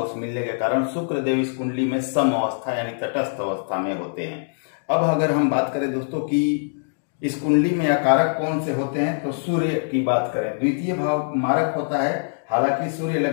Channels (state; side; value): silent; right; digital silence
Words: मिलने के कारण शुक्रदेव इस कुंडली में सम अवस्था यानी तटस्थ अवस्था में होते हैं। अब अगर हम बात करें दोस्तों कि इस कुंडली में कारक कौन से होते हैं, तो सूर्य की बात करें। द्वितीय भाव मारक होता है, हालांकि सूर्य